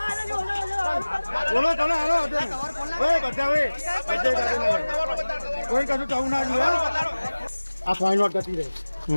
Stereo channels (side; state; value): both; inverted; correlation -1.00